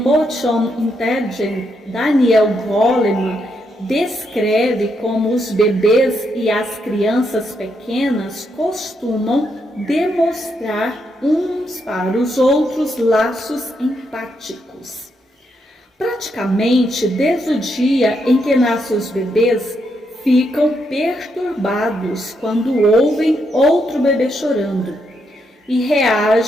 Intelligence, Daniel Goleman descreve como os bebês e as crianças pequenas costumam demonstrar uns para os outros laços empáticos. Praticamente desde o dia em que nascem os bebês, ficam perturbados quando ouvem outro bebê chorando e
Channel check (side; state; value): both; normal; correlation 0.79